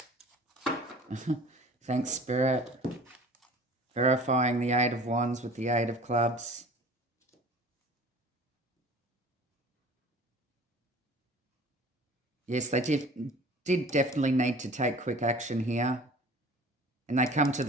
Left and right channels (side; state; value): both; normal; correlation 0.45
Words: Thanks, Spirit. Verifying the 8 of Wands with the 8 of Clubs. Yes, they did definitely need to take quick action here. And they come to